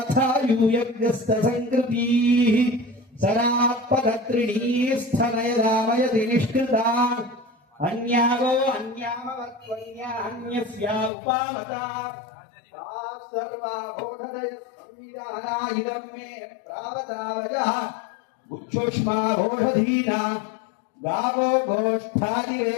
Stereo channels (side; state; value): right; drops out; at 11.1 s